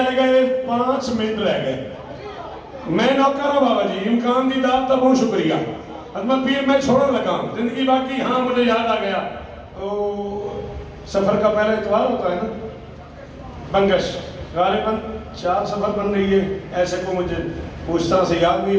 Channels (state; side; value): identical; both; correlation 1.00